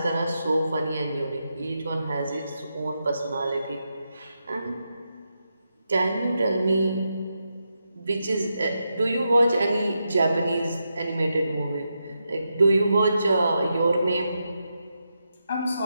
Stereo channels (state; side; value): inverted; both; correlation -0.86